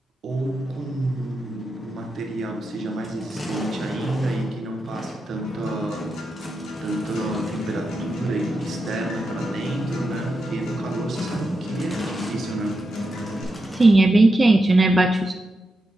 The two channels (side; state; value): both; normal; correlation 0.87